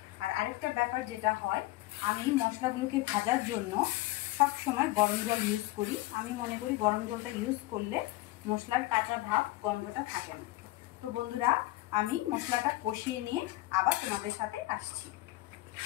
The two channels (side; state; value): right; quieter; 18.9 dB